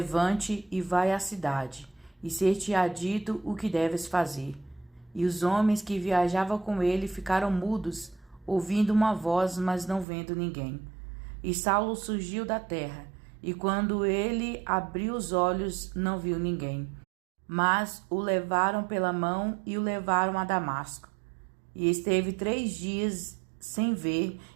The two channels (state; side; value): drops out; left; at 10.1 s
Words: e vai à cidade, e ser-te-á dito o que deves fazer. E os homens que viajavam com ele ficaram mudos, ouvindo uma voz, mas não vendo ninguém. E Saulo surgiu da terra, e quando ele abriu os olhos, não viu ninguém. Mas o levaram pela mão e o levaram a Damasco. E esteve 3 dias sem ver,